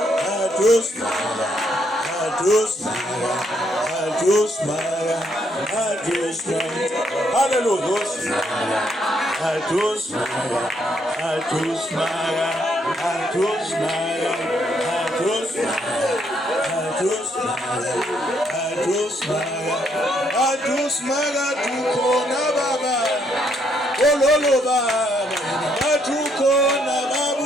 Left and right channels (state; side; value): normal; both; correlation 0.73